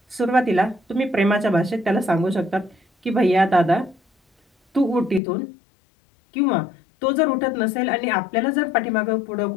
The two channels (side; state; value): right; drops out; at 5.2 s